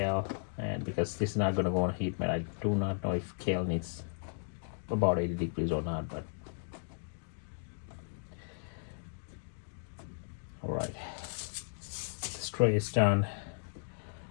and because this is not going to go on heat mat, I do not know if kale needs about 80 degrees or not, but all right, this tray is done.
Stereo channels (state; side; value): silent; right; digital silence